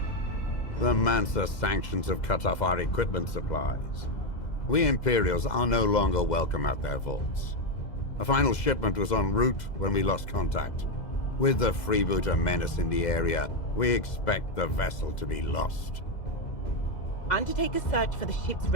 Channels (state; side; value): late; right; 2.0 ms